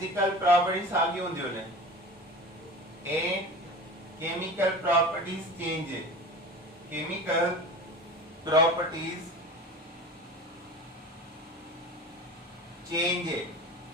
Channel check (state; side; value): normal; both; correlation 0.35